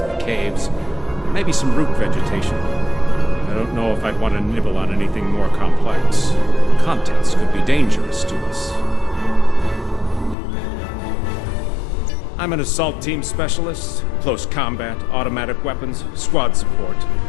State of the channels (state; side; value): drops out; right; at 10.4 s